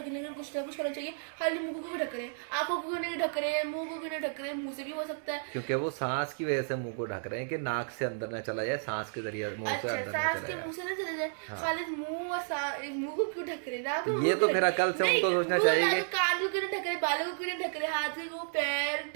के लिए कुछ ना कुछ करना चाहिए। खाली मुंह को भी ढक रहे हैं, आंखों को नहीं ढक रहे हैं, मुंह को भी नहीं ढक रहे हैं, मुंह से भी हो सकता है। क्योंकि वो सांस की वजह से मुंह को ढक रहे हैं कि नाक से अंदर न चला जाए, सांस के जरिए मुंह से अच्छा, अंदर न सांस चला के जाए। मुंह से ना चले जाए, खाली मुंह और मुंह को क्यों ढक रहे हैं? नाक को, ये मुंह तो को फिर अकल से नहीं, उनको सोचना मुंह चाहिए ना, कि- तो कान को क्यों नहीं ढक रहे, बालों को क्यों नहीं ढक रहे, हाथ को, पैर,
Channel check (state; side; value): silent; left; digital silence